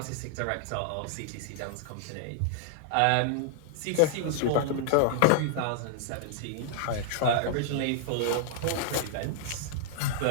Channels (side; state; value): both; different; correlation -0.01